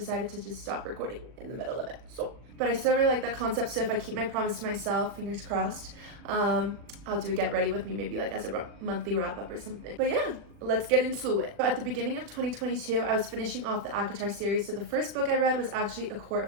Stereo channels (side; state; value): left; late; 40 ms